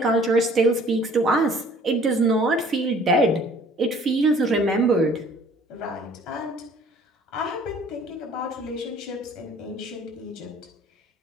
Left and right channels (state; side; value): normal; both; correlation 0.54